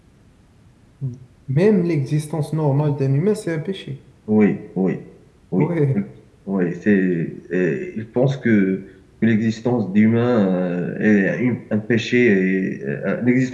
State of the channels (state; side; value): identical; both; correlation 1.00